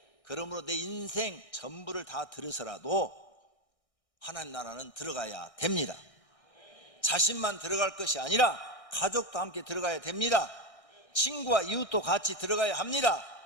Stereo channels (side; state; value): right; late; 1.6 ms